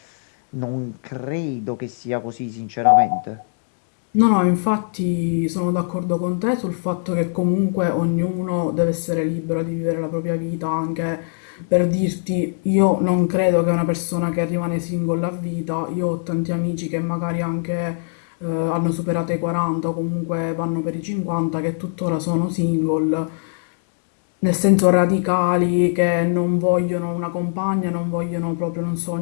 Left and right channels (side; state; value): right; silent; digital silence